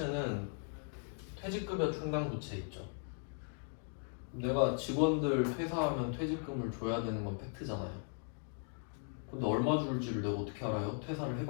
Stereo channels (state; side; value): silent; right; 52 dB below the other